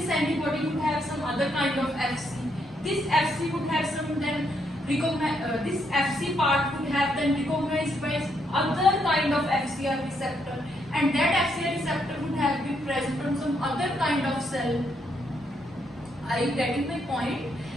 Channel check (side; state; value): both; normal; correlation 0.76